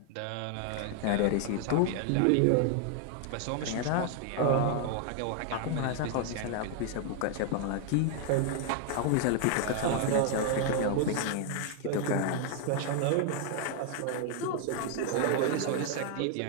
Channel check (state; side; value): different; both; correlation 0.00